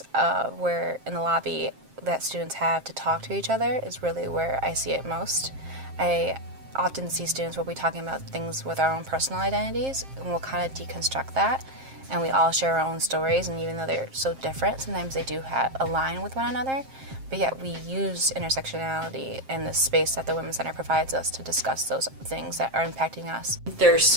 where in the lobby that students have to talk to each other is really where I see it most. I often see students where we're talking about things with our own personal identities, and we'll kind of deconstruct that, and we all share our own stories, and even though they're so different, sometimes they do align with one another, but yet we use intersectionality in the space that the Women's Center provides us to discuss those things that are impacting us. There's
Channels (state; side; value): late; left; 7.5 ms